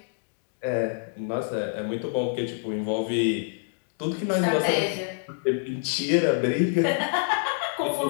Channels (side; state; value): right; silent; 60 dB below the other